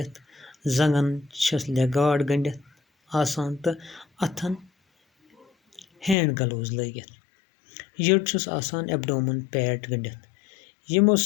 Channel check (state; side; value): drops out; right; at 6.2 s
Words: زنٛگن چھس لیگ گاڈ گٔنڈِتھ آسان تہٕ اتھن ہینڈ گلوز لٲگِتھ. یٔڈ چھُس آسان ایبڈومن پیڈ گٔنڈِتھ. یِمو